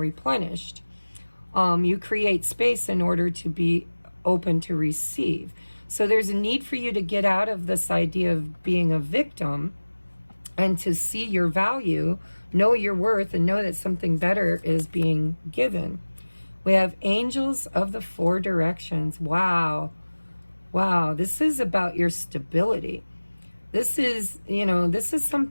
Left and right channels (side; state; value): both; inverted; correlation -1.00